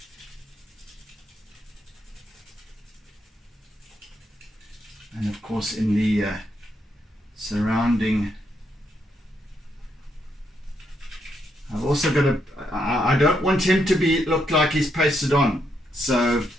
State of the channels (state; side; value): normal; both; correlation 0.78